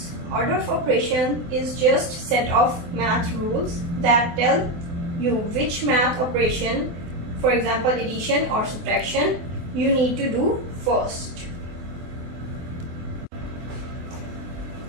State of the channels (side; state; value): left; late; 24 ms